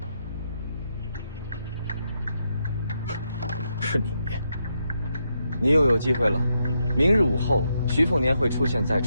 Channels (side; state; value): both; inverted; correlation -0.82